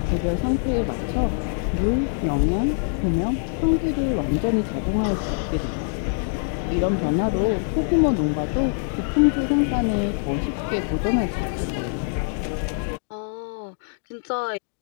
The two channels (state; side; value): silent; right; digital silence